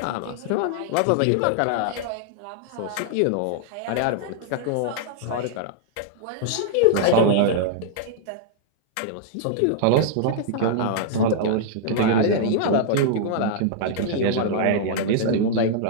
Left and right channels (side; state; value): both; different; correlation -0.01